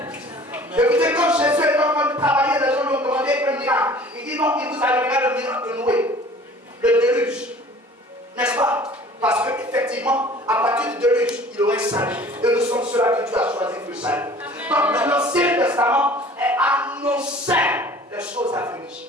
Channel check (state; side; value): normal; both; correlation 0.48